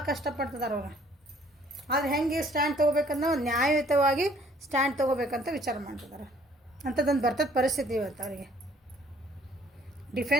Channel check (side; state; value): both; normal; correlation 0.59